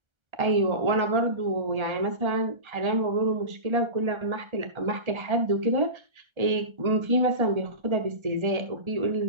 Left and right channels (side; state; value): left; late; 1.3 ms